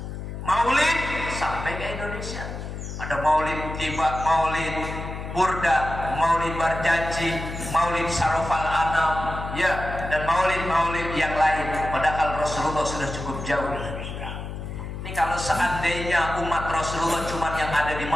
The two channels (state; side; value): noise; left; hum, 8 dB below the sound